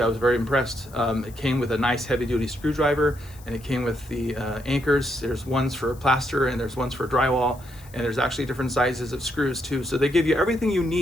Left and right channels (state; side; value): noise; left; hiss, 23 dB below the sound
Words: I was very impressed. It came with a nice heavy-duty screwdriver, and it came with the anchors. There's ones for plaster, and there's ones for drywall, and there's actually different sizes of screws too. So they give you everything you